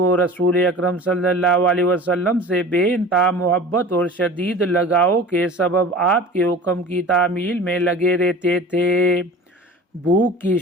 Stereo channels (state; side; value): normal; both; correlation 0.39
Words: رسول اکرم صلی اللہ علیہ وسلم سے بے انتہا محبت اور شدید لگاؤ کے سبب آپ کے حکم کی تعمیل میں لگے رہتے تھے۔ بھوک کی